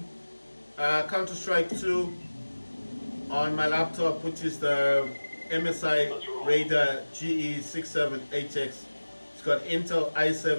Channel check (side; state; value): both; inverted; correlation -1.00